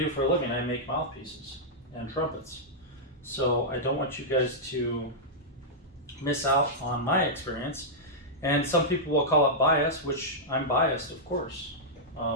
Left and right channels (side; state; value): both; normal; correlation -0.09